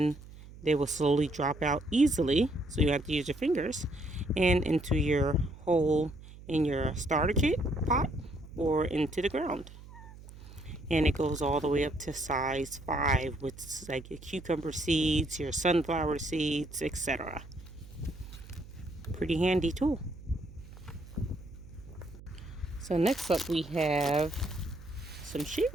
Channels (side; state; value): right; noise; hum, 17 dB below the sound